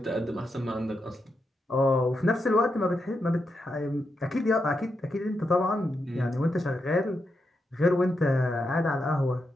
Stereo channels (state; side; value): normal; both; correlation 0.84